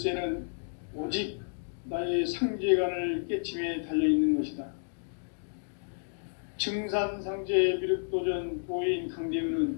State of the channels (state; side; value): silent; right; digital silence